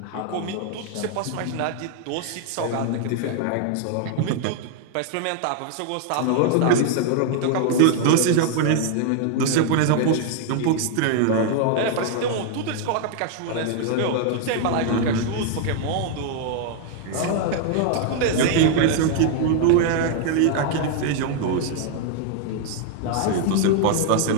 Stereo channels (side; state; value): both; different; correlation 0.00